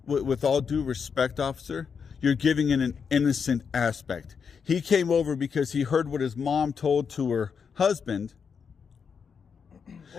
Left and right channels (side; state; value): right; quieter; 6.3 dB